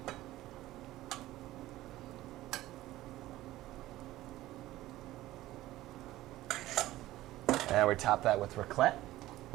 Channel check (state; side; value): quieter; left; 16.1 dB